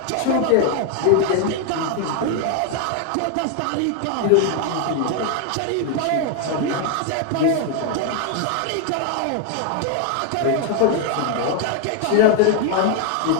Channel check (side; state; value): both; different; correlation 0.01